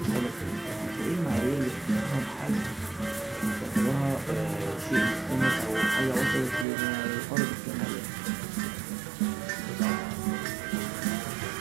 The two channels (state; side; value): drops out; left; at 6.7 s